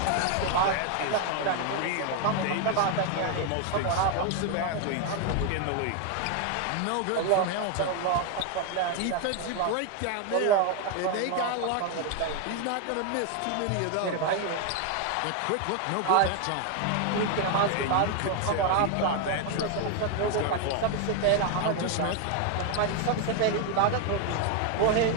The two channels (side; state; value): both; different; correlation 0.01